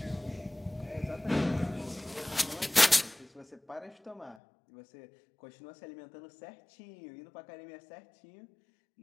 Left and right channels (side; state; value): right; drops out; at 4.4 s